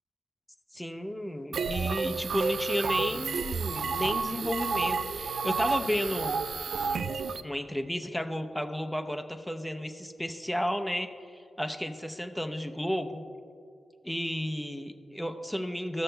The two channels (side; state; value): both; normal; correlation 0.92